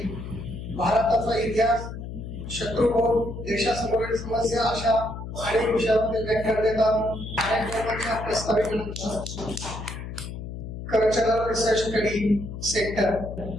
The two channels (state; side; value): noise; left; hum, 8 dB below the sound